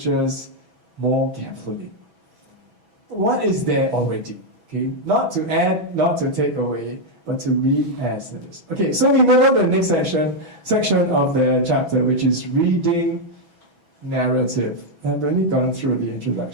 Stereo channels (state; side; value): late; left; 6.1 ms